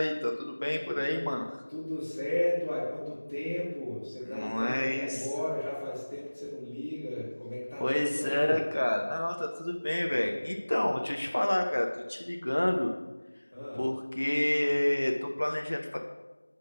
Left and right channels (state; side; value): inverted; both; correlation -1.00